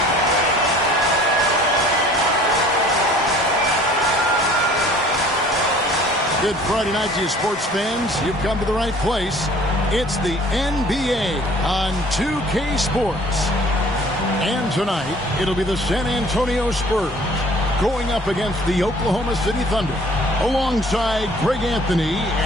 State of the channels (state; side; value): normal; both; correlation 0.52